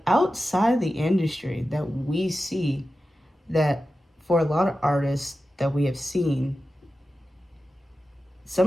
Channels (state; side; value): normal; both; correlation 0.93